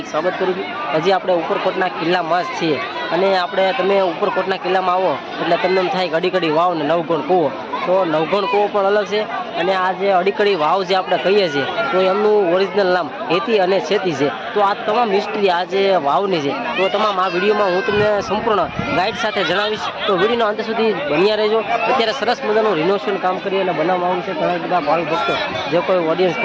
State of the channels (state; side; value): identical; both; correlation 1.00